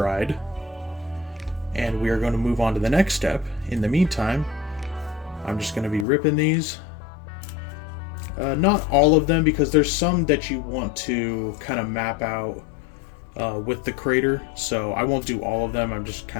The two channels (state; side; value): drops out; right; at 6.1 s